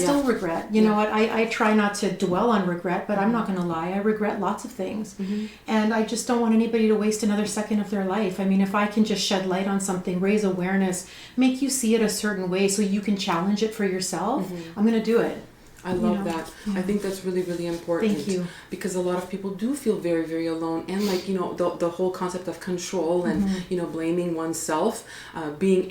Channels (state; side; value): identical; both; correlation 1.00